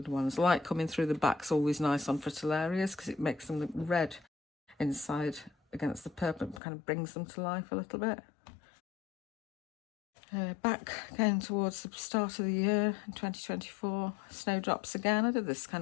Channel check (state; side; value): drops out; right; at 6.6 s